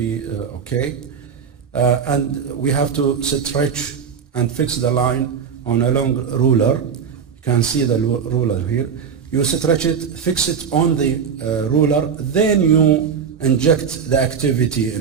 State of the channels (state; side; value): quieter; left; 6.8 dB